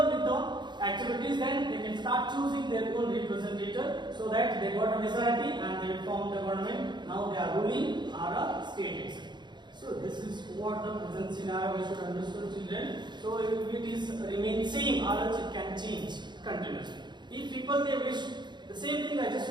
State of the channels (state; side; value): late; left; 0.22 ms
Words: with the activities, then they can start choosing their own representative, so that they got a majority and they form the government. Now they are ruling our state itself. So this is what the present scenario we should understand, children. So if it is remain same or else it can change continuously. If people they wish the same thing, I